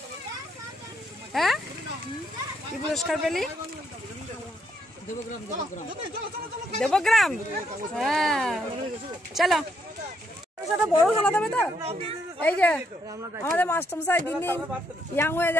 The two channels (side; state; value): both; normal; correlation 0.74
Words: হ্যাঁ কি পুরস্কার পেলি? দেবগ্রাম। হ্যাঁ চলো বড় খেলা দেবে তো। এই যে আমাদের মাস্টারমশাই দিন দিন ইয়াং হয়ে